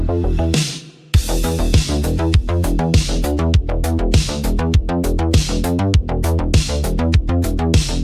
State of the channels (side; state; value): both; identical; correlation 1.00